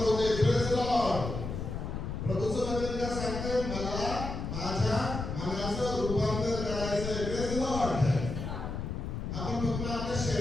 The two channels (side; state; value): left; noise; rumble, 5 dB below the sound